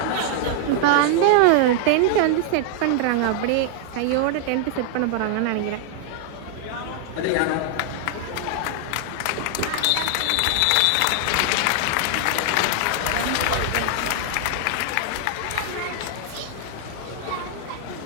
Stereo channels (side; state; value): both; different; correlation 0.00